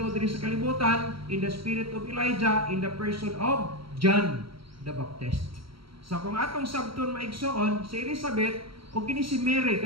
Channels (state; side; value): late; left; 0.75 ms